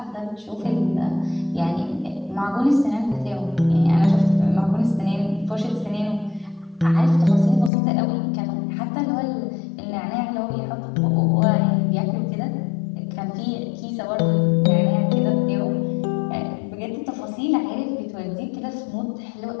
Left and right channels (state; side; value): drops out; right; at 7.7 s